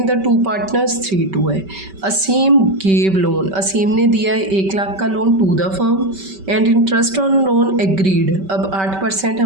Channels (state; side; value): late; left; 5.2 ms